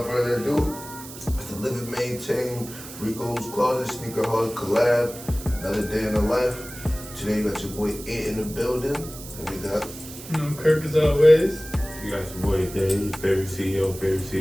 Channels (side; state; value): right; noise; hiss, 14 dB below the sound